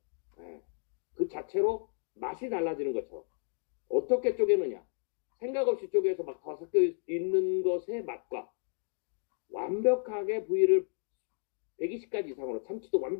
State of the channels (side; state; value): right; silent; 56 dB below the other